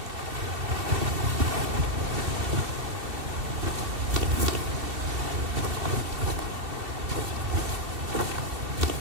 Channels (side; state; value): left; late; 2.7 ms